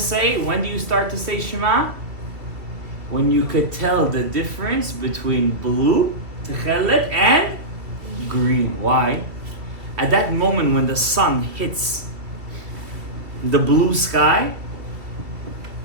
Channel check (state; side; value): late; left; 2.5 ms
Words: When do you start to say Shema? When you could tell the difference between blue, Tekhelet, and green. Why? At that moment when the sun hits the blue sky,